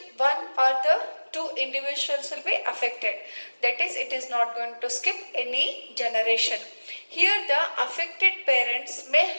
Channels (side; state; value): both; inverted; correlation -1.00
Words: one or the two individuals will be affected. That is, it is not going to skip any generation. Here the affected parents may